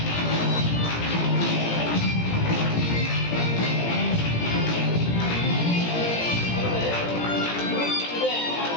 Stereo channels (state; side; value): late; right; 17 ms